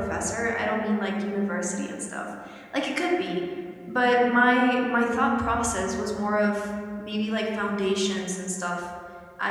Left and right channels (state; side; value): identical; both; correlation 1.00